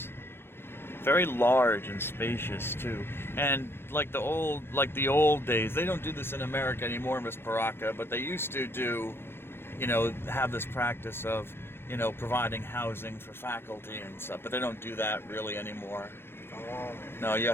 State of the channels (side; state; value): right; late; 0.11 ms